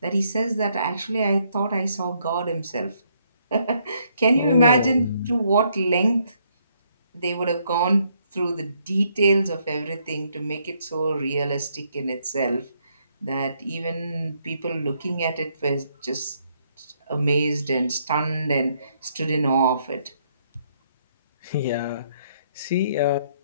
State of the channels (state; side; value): inverted; both; correlation -0.72